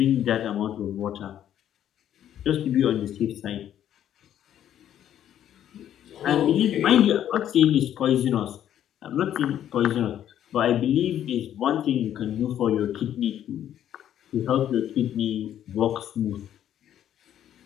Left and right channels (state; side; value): quieter; right; 10.8 dB